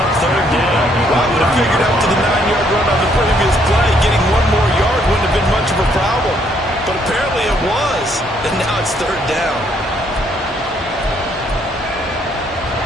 third down. Well, I would have figured out to the 9-yard run on the previous play, getting 1 more yard wouldn't have been much of a problem. But apparently it was, and now it's third down.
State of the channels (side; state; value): both; normal; correlation 0.69